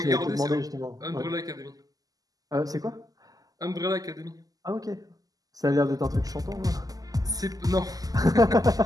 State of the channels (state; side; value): late; left; 0.17 ms